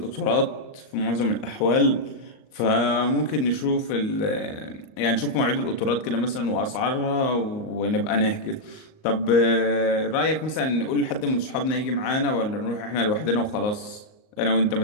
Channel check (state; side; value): late; right; 39 ms